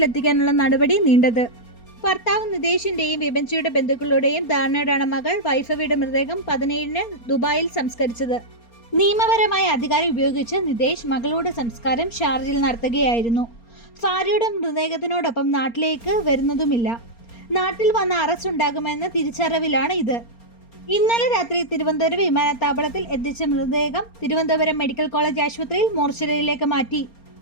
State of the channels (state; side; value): late; right; 4.3 ms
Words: നടപടി നീണ്ടത്. ഭർത്താവ് നിതേഷിന്റെയും വിഭജിയുടെ ബന്ധുക്കളുടെയും ധാരണയോടാണ് മകൾ വൈഭവിയുടെ മൃതദേഹം 17-ന് ദുബായിൽ സംസ്കരിച്ചത്. നിയമപരമായ അധികാരം ഉപയോഗിച്ച് നിതേഷ് മകളുടെ സംസ്കാരം ഷാർജയിൽ നടത്തുകയായിരുന്നു. ഭാര്യയുടെ മൃതദേഹത്തിനോടൊപ്പം നാട്ടിലേക്ക് വരുന്നതുമില്ല. നാട്ടിൽ വന്ന അറസ്റ്റ് ഉണ്ടാകുമെന്ന തിരിച്ചറിവിലാണ് ഇത്. ഇന്നലെ രാത്രി തിരുവനന്തപുരം വിമാനത്താവളത്തിൽ എത്തിച്ച മൃതദേഹം തിരുവനന്തപുരം മെഡിക്കൽ കോളേജ് ആശുപത്രിയിൽ മോർച്ചറിയിലേക്ക് മാറ്റി.